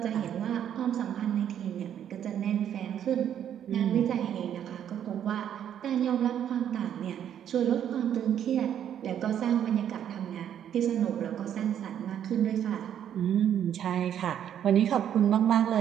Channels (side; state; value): left; quieter; 9.7 dB